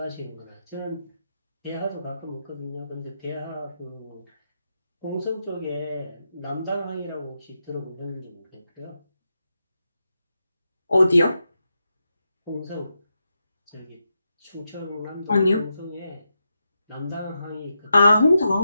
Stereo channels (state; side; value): inverted; both; correlation -0.86